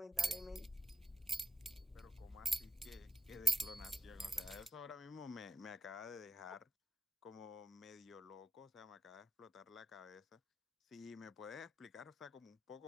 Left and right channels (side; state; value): both; normal; correlation 0.85